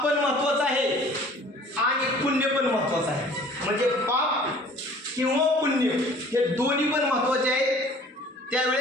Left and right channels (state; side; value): normal; both; correlation 0.50